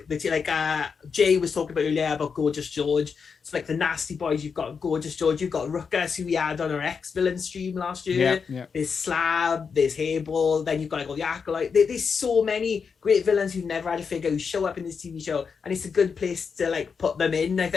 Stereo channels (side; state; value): right; quieter; 5.8 dB